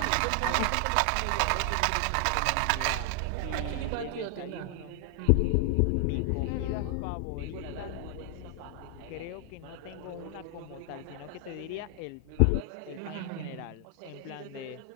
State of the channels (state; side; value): different; both; correlation 0.00